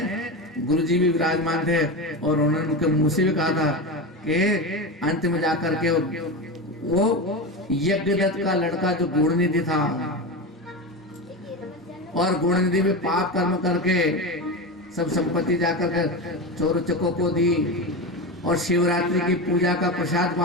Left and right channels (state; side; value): normal; both; correlation 0.20